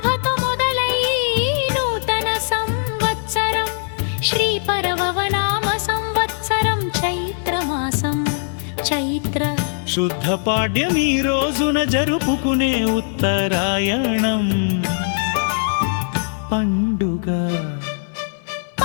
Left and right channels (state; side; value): silent; right; 56 dB below the other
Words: మొదలై నూతన సంవత్సరం శ్రీ పరవనామ సంవత్సరం చైత్రమాసం చైత్ర శుద్ధ పాడ్యం ఈ రోజున జరుపుకునే ఉత్తరాయణం పండుగ.